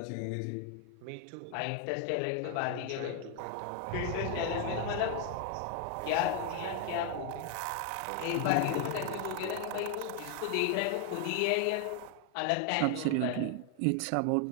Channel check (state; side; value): different; both; correlation 0.00